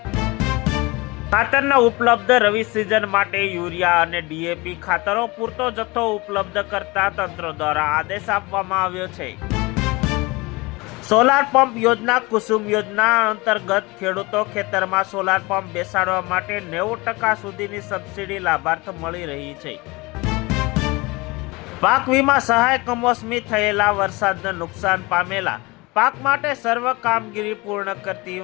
ખાતરના ઉપલબ્ધ રવિ સિઝન માટે યુરિયા અને ડીએપી ખાતરો પૂરતો જથ્થો ઉપલબ્ધ કરતા તંત્ર દ્વારા આદેશ આપવામાં આવ્યો છે। સોલાર પંપ યોજના કુસુમ યોજના અંતર્ગત ખેડૂતો ખેતરમાં સોલાર પંપ બેસાડવા માટે 90% સુધીની સબસિડી લાભાર્થ મળી રહી છે। પાક વીમા સહાય કમોસમી થયેલા વરસાદને નુકસાન પામેલા પાક માટે સર્વ કામગીરી પૂર્ણ કરતી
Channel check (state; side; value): quieter; right; 24.0 dB